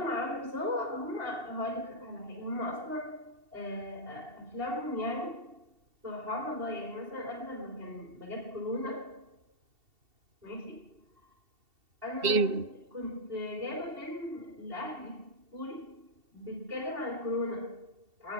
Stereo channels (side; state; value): left; late; 2.7 ms